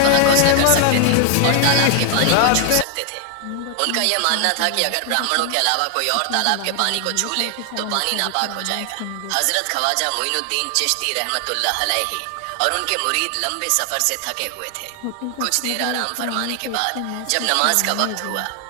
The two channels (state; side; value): different; both; correlation 0.00